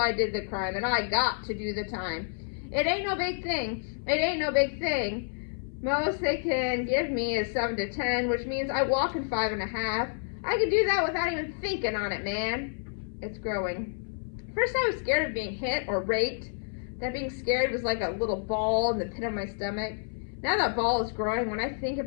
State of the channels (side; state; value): right; silent; 58 dB below the other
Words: did the crime, and I got to do the time. It ain't no big thing. It ain't no big thing. Most they can give me is 7 to 10, which means I walk in 5.5. I can do that without even thinking on it, man. It's growing. First I was scared of being hit or raped. That being scared was like a little ball in the pit of my stomach. Now that ball is growing when I think